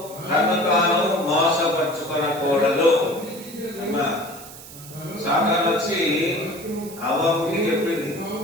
తను తాను మోసపరుచుకోనకూడదు. సాతాను వచ్చి అవ్వకి చెప్పింది,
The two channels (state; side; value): noise; right; hiss, 16 dB below the sound